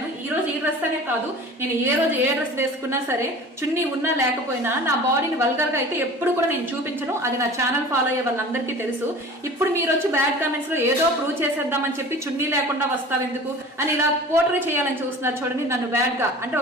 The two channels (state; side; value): normal; both; correlation 0.41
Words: ఈ రోజు ఈ డ్రెస్ అనే కాదు, నేను ఏ రోజు ఏ డ్రెస్ వేసుకున్నా సరే, చున్నీ ఉన్నా లేకపోయినా నా బాడీని వల్గర్ గా అయితే ఎప్పుడు కూడా నేను చూపించను. అది నా ఛానల్ ఫాలో అయ్యే వాళ్ళందరికీ తెలుసు. ఇప్పుడు మీరు వచ్చి బ్యాడ్ కామెంట్స్ లో ఏదో ప్రూవ్ చేసేద్దామని చెప్పి చున్నీ లేకుండా వస్తావు ఎందుకు అని ఇలా పోర్ట్రే చేయాలని చూస్తున్నారు. చూడండి, నన్ను బ్యాడ్ గా అంటే